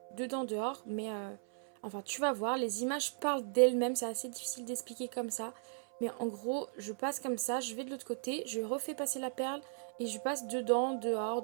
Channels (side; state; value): left; silent; 53 dB below the other